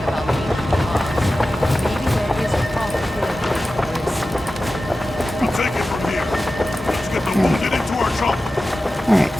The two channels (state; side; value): normal; both; correlation 0.94